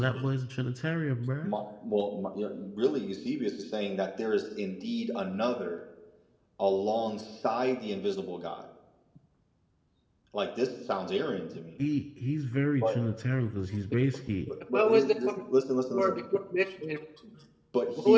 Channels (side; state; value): both; identical; correlation 1.00